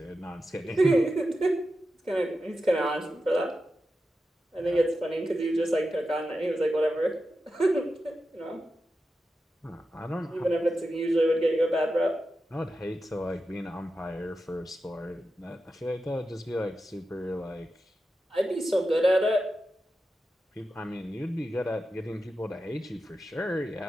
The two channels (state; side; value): normal; both; correlation 0.91